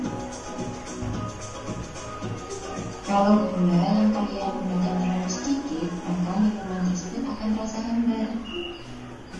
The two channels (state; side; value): identical; both; correlation 1.00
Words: Kalau gula yang kalian gunakan terlalu sedikit, maka minuman tersebut akan terasa hambar.